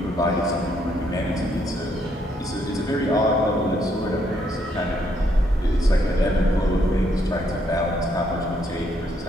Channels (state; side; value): normal; both; correlation 0.72